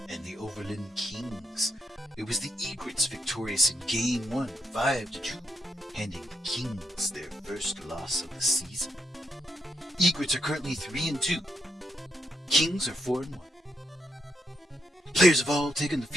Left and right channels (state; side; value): normal; both; correlation 0.79